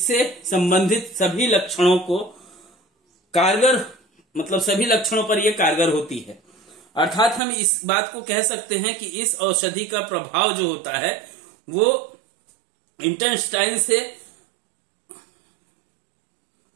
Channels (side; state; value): left; drops out; at 7.4 s